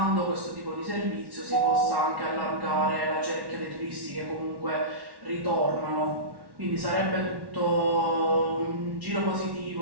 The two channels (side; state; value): left; late; 1.1 ms